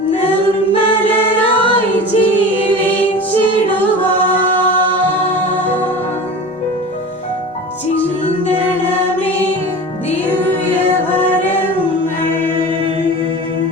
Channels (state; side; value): normal; both; correlation 0.34